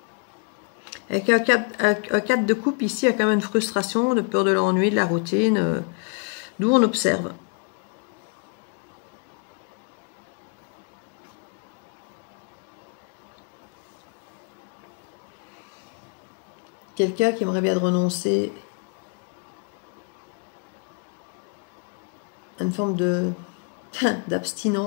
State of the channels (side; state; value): right; quieter; 36.6 dB